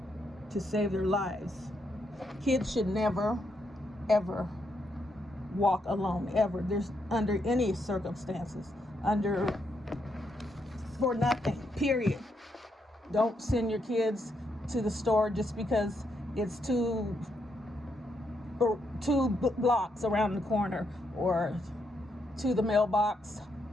to save their lives. Kids should never, ever walk alone, ever. There's under any circumstances, for nothing, period. Don't send your kids to the store just because it's two blocks around the corner, or to the mailbox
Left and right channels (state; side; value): normal; both; correlation 0.78